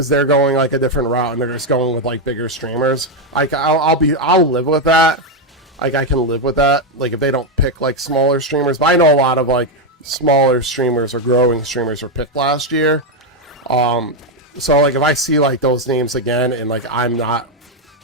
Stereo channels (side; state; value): both; normal; correlation 0.04